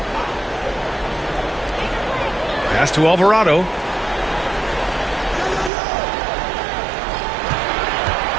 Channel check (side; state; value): left; drops out; at 5.7 s